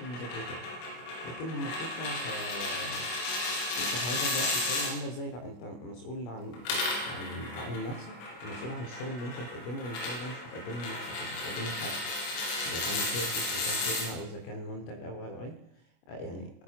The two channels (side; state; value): right; late; 25 ms